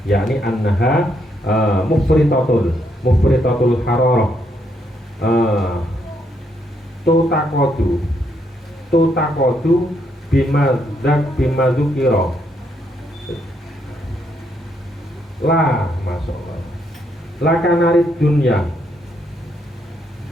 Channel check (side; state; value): both; normal; correlation 0.75